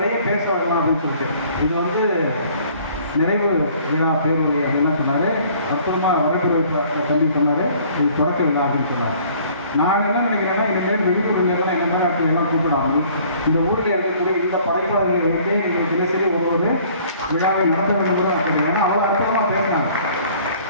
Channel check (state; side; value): inverted; both; correlation -0.55